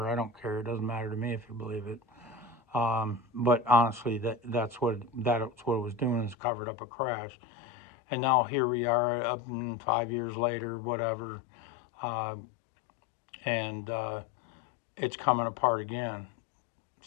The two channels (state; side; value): drops out; right; at 6.4 s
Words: I don't care. It doesn't matter to me if you believe it. But honestly, that's what it was doing, is covered up a crash. And now here we are, up 5 years later, whatever, and it's coming apart again.